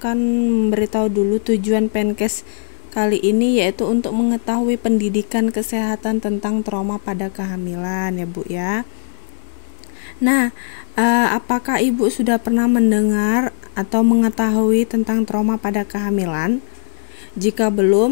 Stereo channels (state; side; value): silent; right; digital silence